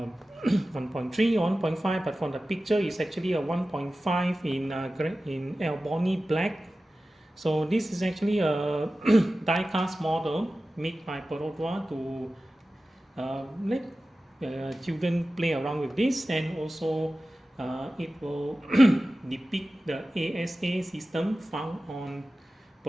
or 1.5, but from the picture it's actually a 1.5 in Albany black. So this is actually a die-cast model made by Perodua to let children play around with this, and also it will depict the ASA system found on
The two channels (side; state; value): both; normal; correlation 0.95